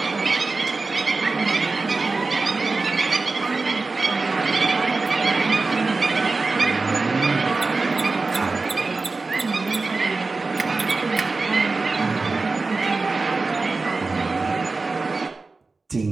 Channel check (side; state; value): left; quieter; 3.8 dB